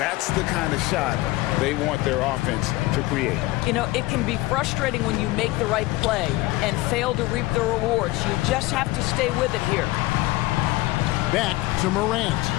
the kind of shot they want their offense to create. You know, it can be frustrating when you make the right play and fail to reap the rewards. You just have to stay with it here. Back to Morant.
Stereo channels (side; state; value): right; quieter; 19.3 dB